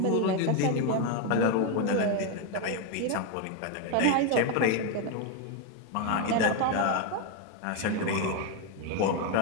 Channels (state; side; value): different; both; correlation 0.01